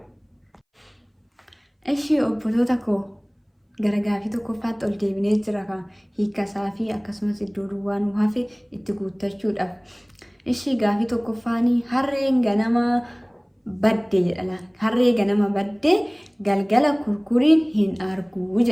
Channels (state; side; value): identical; both; correlation 1.00